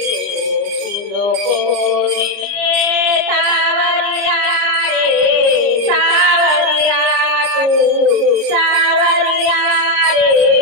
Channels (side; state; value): left; late; 29 ms